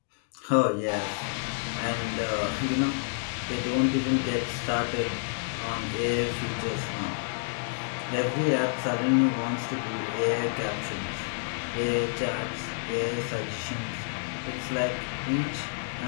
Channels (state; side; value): silent; right; digital silence